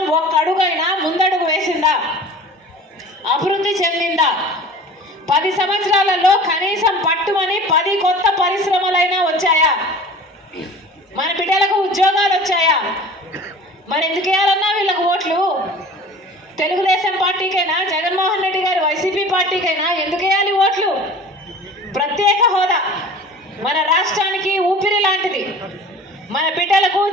ఒక్క అడుగైనా ముందడుగు వేసిందా? అభివృద్ధి చెందిందా? 10 సంవత్సరాలలో కనీసం పట్టుమని 10 కొత్త పరిశ్రమలైనా వచ్చాయా? మన బిడ్డలకు ఉద్యోగాలు వచ్చాయా? మరి ఎందుకు వేయాలన్నా వీళ్ళకు ఓట్లు? తెలుగుదేశం పార్టీకైనా, జగన్మోహన్ రెడ్డి గారు వైసీపీ పార్టీకైనా ఎందుకు వేయాలి ఓట్లు? ప్రత్యేక హోదా మన రాష్ట్రానికి ఊపిరి లాంటిది, మన బిడ్డలకు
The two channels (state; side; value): normal; both; correlation 0.42